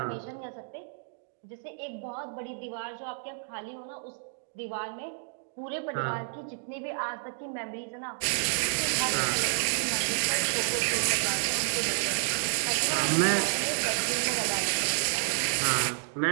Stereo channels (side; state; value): left; silent; digital silence